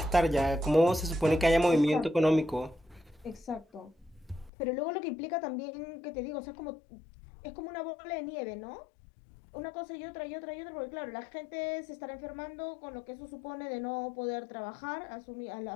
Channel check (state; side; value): drops out; right; at 4.5 s